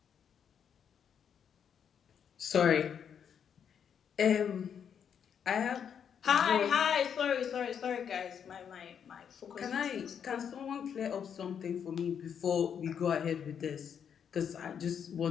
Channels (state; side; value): quieter; right; 7.9 dB